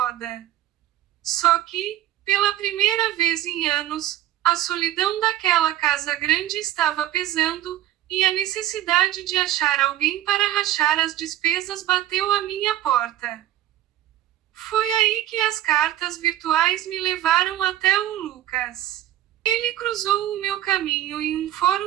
Só que, pela primeira vez em anos, a solidão daquela casa grande estava pesando, e a necessidade de achar alguém para rachar as despesas bateu à minha porta. Foi aí que as cartas virtuais me levaram até o Lucas. Ele cruzou o meu caminho em um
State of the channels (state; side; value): quieter; left; 13.2 dB